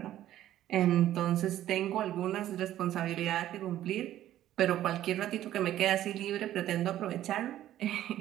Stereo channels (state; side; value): quieter; left; 12.9 dB